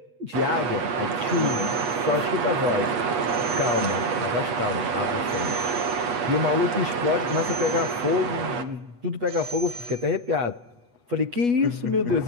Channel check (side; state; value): left; late; 8.3 ms